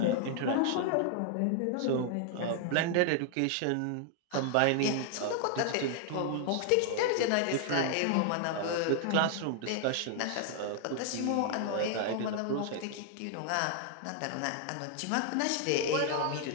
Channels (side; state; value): both; different; correlation 0.00